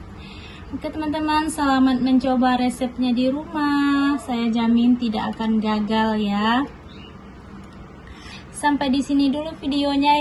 Oke teman-teman, selamat mencoba resepnya di rumah. Saya jamin tidak akan gagal ya. Sampai di sini dulu videonya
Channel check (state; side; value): identical; both; correlation 1.00